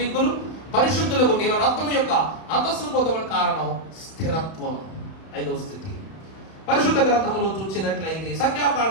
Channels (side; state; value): right; late; 31 ms